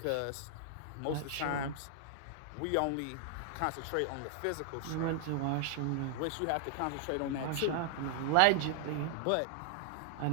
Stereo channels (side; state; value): both; different; correlation 0.00